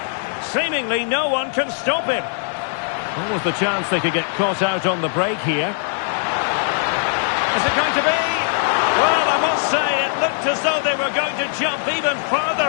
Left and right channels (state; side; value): silent; right; digital silence